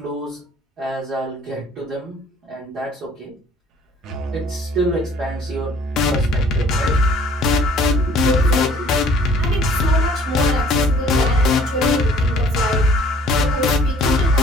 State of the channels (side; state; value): both; normal; correlation 0.55